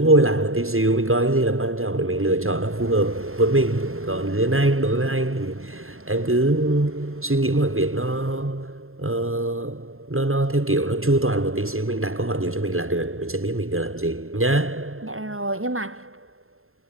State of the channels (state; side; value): late; left; 0.61 ms